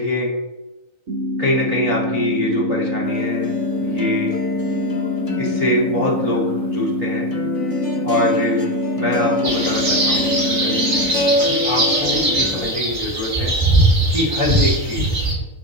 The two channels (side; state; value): left; late; 3.9 ms